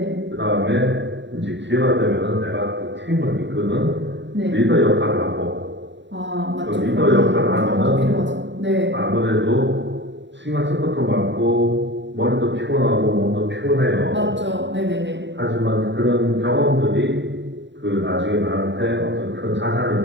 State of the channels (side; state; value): left; late; 0.52 ms